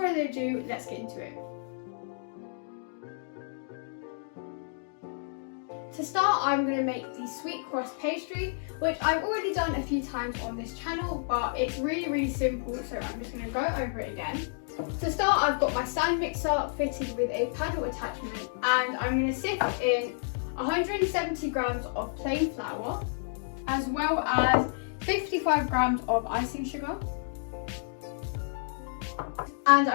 ado, let's get into it. To start, I'm going to make the sweet crust pastry, which I've already done a few times on this channel, but it's really simple, so I'm just going to go over it again. To start, I've got my stand mixer fitted with a paddle attachment, and I'm going to sift in 170 grams of plain flour, as well as 55 grams of icing sugar. And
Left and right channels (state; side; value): silent; right; digital silence